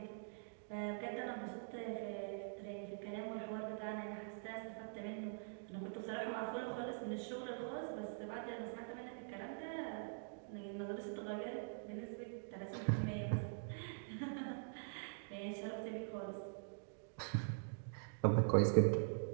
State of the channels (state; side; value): silent; left; digital silence